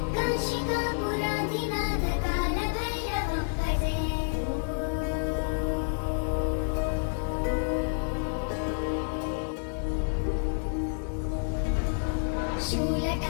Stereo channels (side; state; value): right; silent; 58 dB below the other